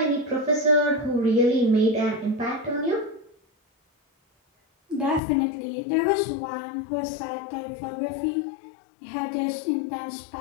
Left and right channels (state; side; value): drops out; right; at 5.2 s